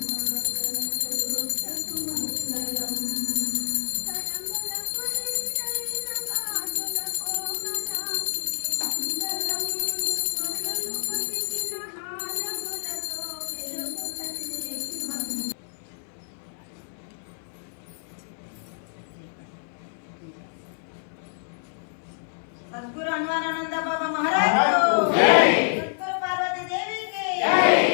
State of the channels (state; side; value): silent; right; 58 dB below the other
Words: सद्गुरु अनवारानंद बाबा महाराज को जय। सद्गुरु पार्वती देवी की जय।